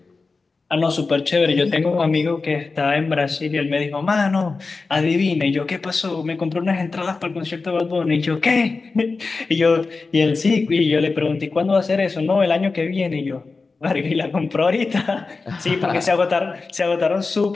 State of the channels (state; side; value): quieter; right; 4.1 dB